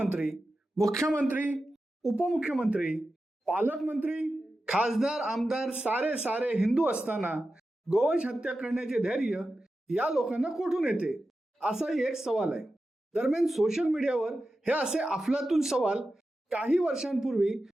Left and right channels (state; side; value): normal; both; correlation 0.92